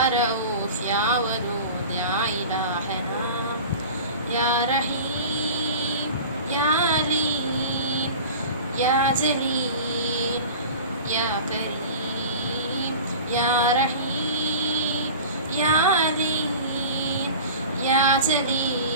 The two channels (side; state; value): both; inverted; correlation -0.37